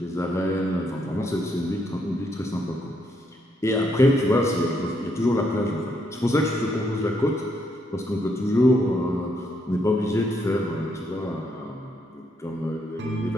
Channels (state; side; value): normal; both; correlation 0.75